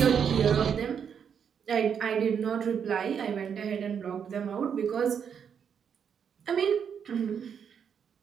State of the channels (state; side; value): quieter; left; 7.5 dB